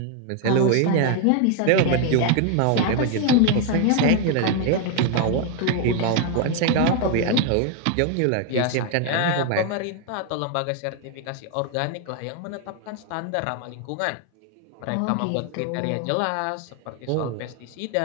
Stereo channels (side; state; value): both; different; correlation 0.01